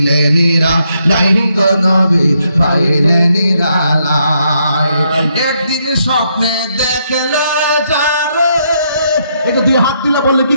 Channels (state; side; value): inverted; both; correlation -0.76